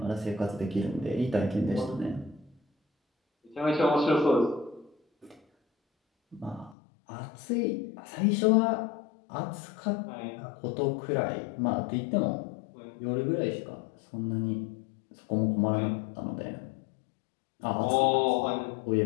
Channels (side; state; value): right; drops out; at 6.8 s